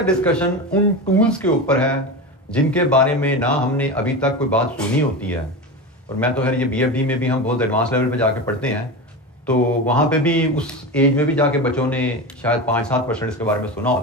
डिस्कशन उन टूल्स के ऊपर है जिनके बारे में ना हमने अभी तक कोई बात सुनी होती है। और मैं तो खैर ये बीएफडी में भी हम बहुत एडवांस लेवल पे जाके पढ़ते हैं तो वहाँ पे भी उस एज में भी जाके बच्चों ने शायद 5-7% इसके बारे में सुना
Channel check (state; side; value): normal; both; correlation 0.23